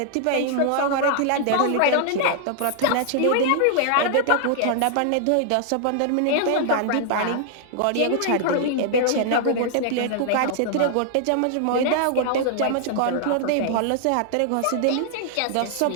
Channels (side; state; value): both; different; correlation -0.01